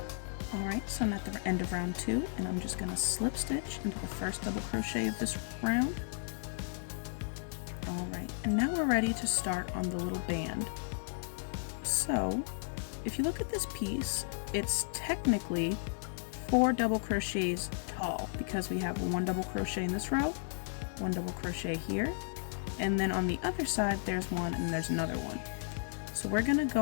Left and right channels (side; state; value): right; silent; digital silence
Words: Alright, so I'm at the end of round 2, and I'm just going to slip stitch into the first double crochet of this round. Alright, and now we're ready to start on the little band. So, if you look at this piece, it's technically 4 double crochets tall because we have 1 double crochet in this row, 1 double crochet here, and then on the other side there's 1 and there's another one. So we're going to